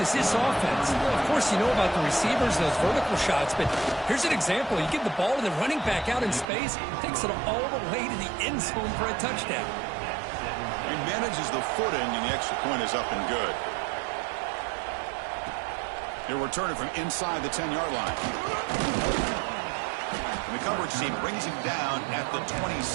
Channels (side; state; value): left; drops out; at 6.5 s